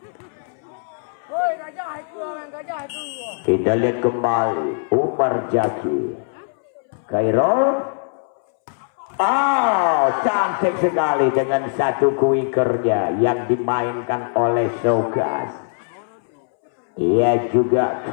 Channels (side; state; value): right; silent; 65 dB below the other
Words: Kita lihat kembali Umar Jaki. Khairul Oh, cantik sekali dengan satu kuikernya yang dimainkan oleh Sogas. Ia juga